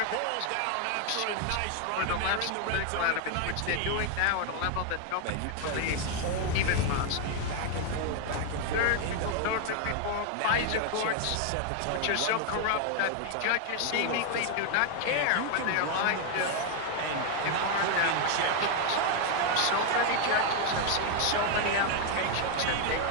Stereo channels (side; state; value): both; different; correlation 0.00